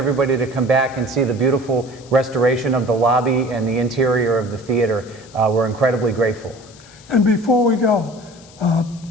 to come back and see the beautiful restoration of the lobby and the interior of the theater. We're incredibly grateful. And before we go,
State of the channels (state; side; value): noise; left; hiss, 23 dB below the sound